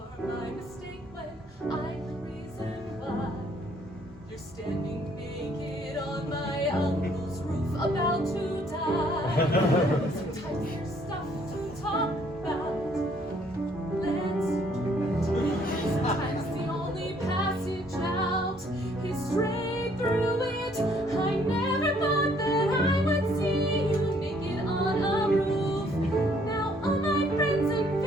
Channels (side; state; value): both; normal; correlation 0.64